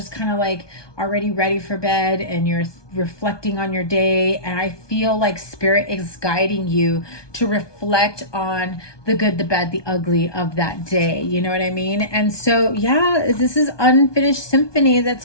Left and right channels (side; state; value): right; late; 1.2 ms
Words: kind of like already ready for bed and you're reflecting on your day. And I feel like spirit is guiding you to reflect on the good, the bad, the ugly of that day. You know what I mean? And so, yeah, this is Unfinished Symphony.